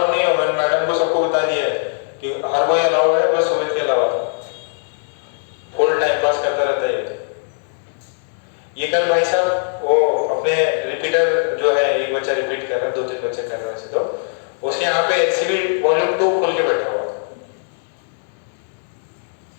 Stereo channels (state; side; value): silent; right; digital silence